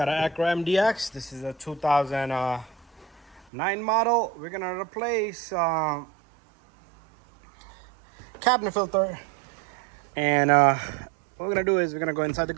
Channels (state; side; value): drops out; left; at 3.5 s